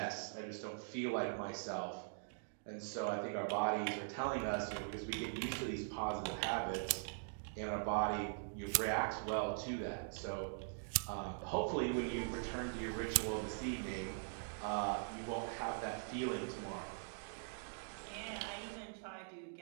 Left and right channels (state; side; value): silent; left; digital silence